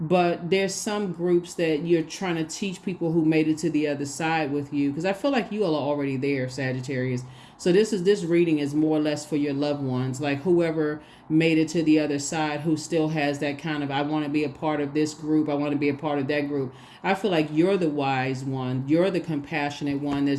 But there's some groups that you're trying to teach people who made it to the other side with you, because I feel like you all are already there, Sagittarius. So this reading is more or less for your loved ones, like whoever made it to the other side, who still has that kind of, I want to be a part of this group, I want to be a part of that group. I feel like you're the wise one, you're the compassionate one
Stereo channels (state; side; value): identical; both; correlation 1.00